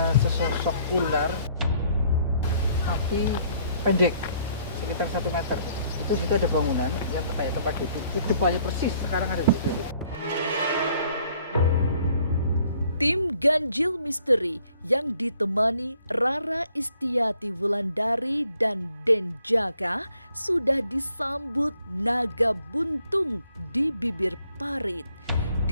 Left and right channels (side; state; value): both; inverted; correlation -0.64